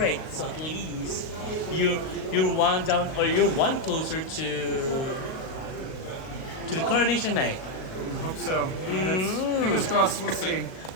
So at least you're one down, or you're one closer to the coronation night. I hope so. That's, fingers crossed. We'll see.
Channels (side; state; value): right; late; 37 ms